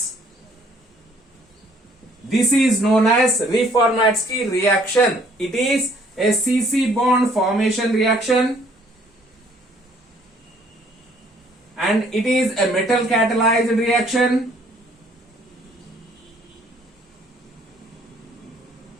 This is known as Reformatsky reaction. It is a CC bond formation reaction and it is a metal catalyzed reaction.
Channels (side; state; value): both; normal; correlation 0.61